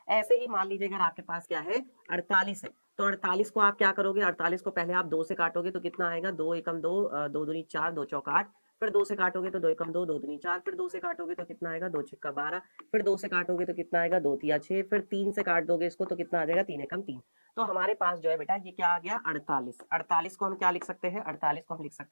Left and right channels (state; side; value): inverted; both; correlation -1.00